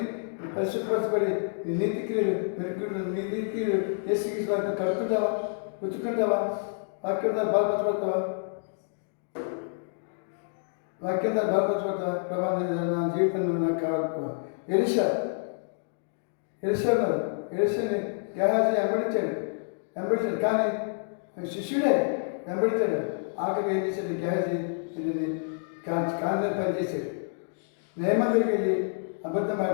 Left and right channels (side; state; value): right; silent; digital silence